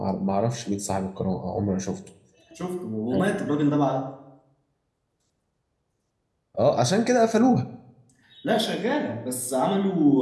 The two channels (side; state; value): both; identical; correlation 1.00